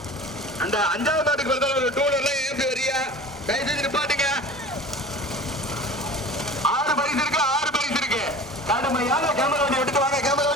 அந்த 5வது மாட்டுக்கு வருது டூலர்லாம் ஏற்றி வரியா கை செஞ்சு நிப்பாட்டுங்க. 6 பரிசு இருக்கு. கடுமையான கேமரா வண்டி எடுத்து வாங்க. கேமரா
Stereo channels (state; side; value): normal; both; correlation 0.39